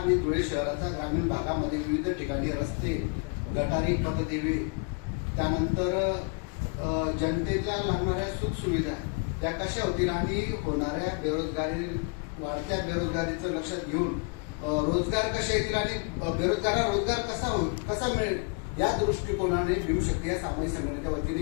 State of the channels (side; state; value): right; quieter; 33.2 dB